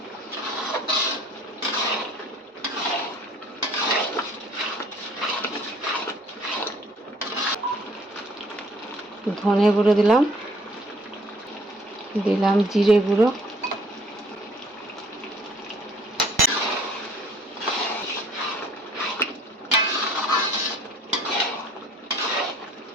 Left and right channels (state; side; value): normal; both; correlation 0.58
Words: ধনে গুঁড়ো দিলাম, দিলাম জিরে গুঁড়ো,